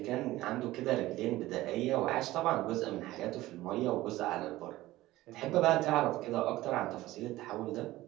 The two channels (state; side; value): quieter; left; 17.0 dB